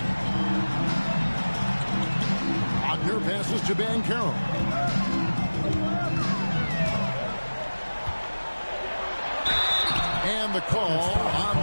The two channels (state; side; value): inverted; both; correlation -1.00